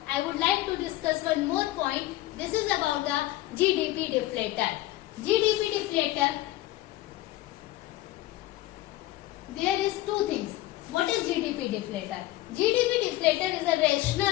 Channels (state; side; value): quieter; right; 16.5 dB